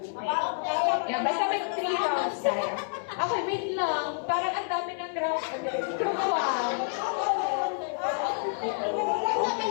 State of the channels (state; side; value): silent; right; 59 dB below the other